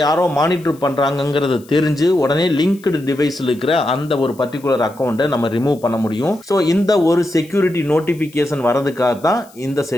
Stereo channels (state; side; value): noise; left; hiss, 26 dB below the sound